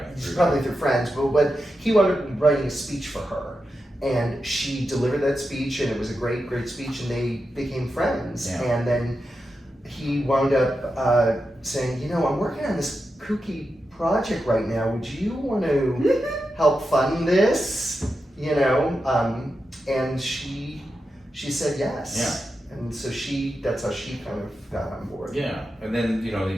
Probably through friends, but he wound up writing a speech for her, and she delivered that speech, and it was a great speech, and they became friends. Yeah. And then he wound up saying, I'm working on this kooky project right now. Would you want to help fund this? And she said yes. Yeah. And so that's how she kind of got on board. Yeah, and then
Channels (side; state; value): both; normal; correlation 0.89